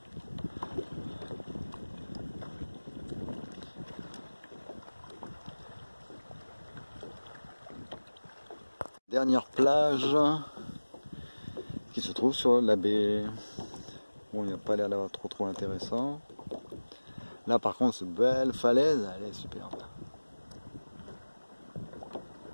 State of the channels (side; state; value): both; inverted; correlation -1.00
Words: Dernière plage qui se trouve sur la baie. Bon, il n'y a pas l'air d'avoir trop intéressant. Là par contre, cette belle falaise, elle est superbe.